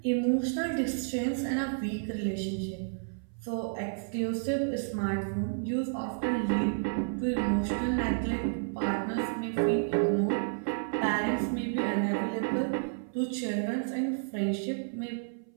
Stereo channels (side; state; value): left; silent; 57 dB below the other